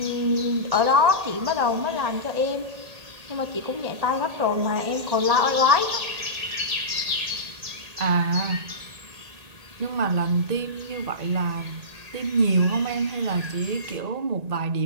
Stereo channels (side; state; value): left; late; 1.8 ms